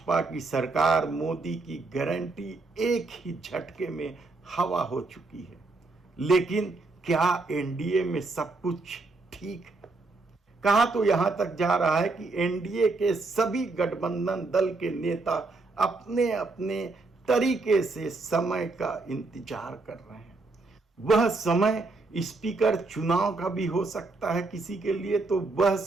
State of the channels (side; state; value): left; quieter; 3.5 dB